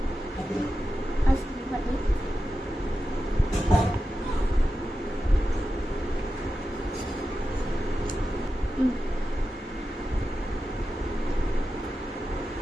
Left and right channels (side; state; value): both; normal; correlation 0.91